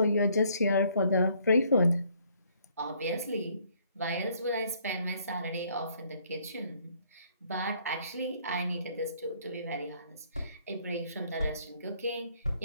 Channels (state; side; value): inverted; both; correlation -0.65